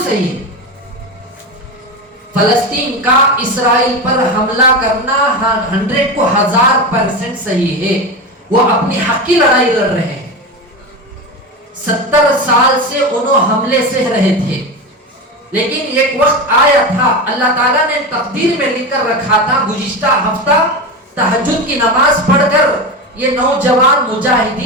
صحیح ہے. فلسطین کا اسرائیل پر حملہ کرنا 100 کو 1000% صحیح ہے. وہ اپنی حق کی لڑائی لڑ رہے ہیں. 70 سال سے انہوں حملے سہ رہے تھے, لیکن ایک وقت آیا تھا, اللہ تعالیٰ نے تقدیر میں لکھ کر رکھا تھا. گزشتہ ہفتہ تہجد کی نماز پڑھ کر یہ نوجوان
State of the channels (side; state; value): both; normal; correlation 0.21